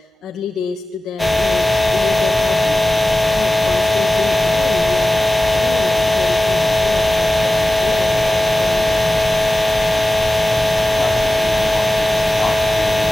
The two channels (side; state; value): both; normal; correlation 0.96